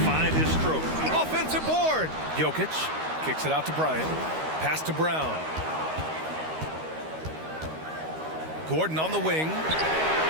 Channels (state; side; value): late; left; 13 ms